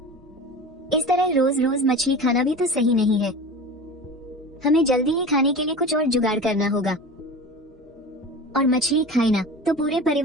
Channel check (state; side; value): normal; both; correlation 0.33